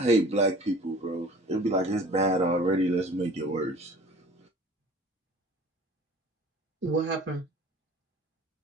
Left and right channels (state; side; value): normal; both; correlation 0.46